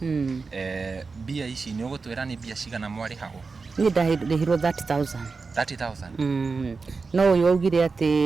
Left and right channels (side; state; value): left; quieter; 4.4 dB